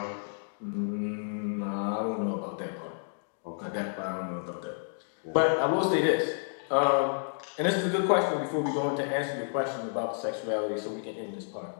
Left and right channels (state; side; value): silent; right; digital silence